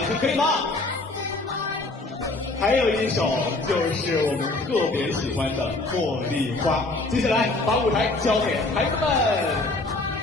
声，可以吗？还有一首就是我们特别喜欢的《茉莉花》。接下来把舞台交给孩子们。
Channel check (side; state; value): right; quieter; 3.1 dB